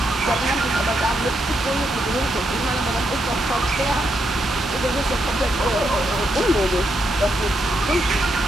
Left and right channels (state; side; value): normal; both; correlation 0.80